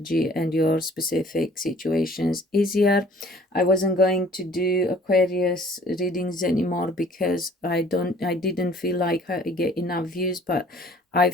and your specific situations easier. I wasn't going to do Aquarius readings anymore because I didn't feel like I get enough views, but I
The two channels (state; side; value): normal; both; correlation 0.54